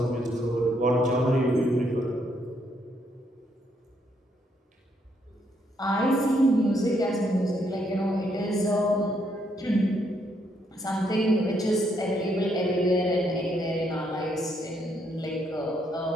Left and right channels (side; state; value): both; normal; correlation 0.74